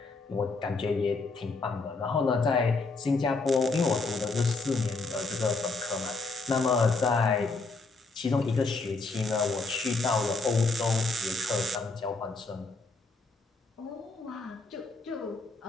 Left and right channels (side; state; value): right; quieter; 3.7 dB